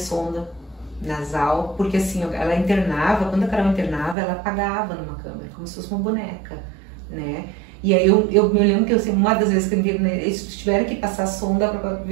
nasal, porque assim, ela internava, quando a Carol internava, ela apagava numa câmera, como se fosse uma boneca, né? E aí eu me lembro que assim, uma das vezes que eu internei, eles tiveram que passar a sonda para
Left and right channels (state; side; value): drops out; left; at 4.2 s